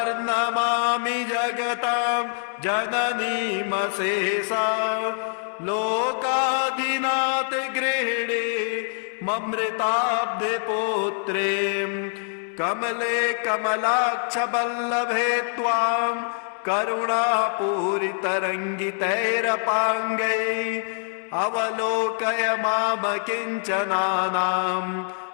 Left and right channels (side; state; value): right; silent; digital silence